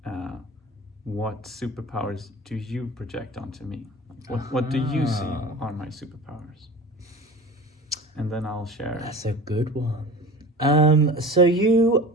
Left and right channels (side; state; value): both; normal; correlation 0.36